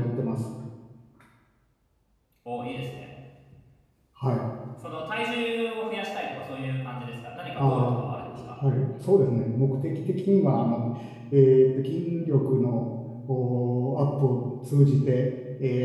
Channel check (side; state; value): both; identical; correlation 1.00